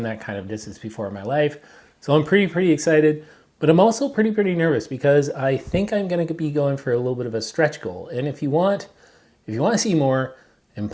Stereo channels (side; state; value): both; identical; correlation 1.00